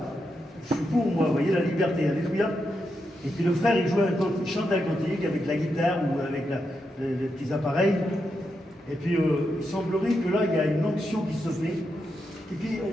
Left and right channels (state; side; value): normal; both; correlation 0.85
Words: Je suis pour moi, vous voyez, la liberté, alléluia. Et puis le frère, il chante un cantique avec la guitare ou avec les petits appareils. Et puis il semblerait que là, il y a une onction qui se fait. Et puis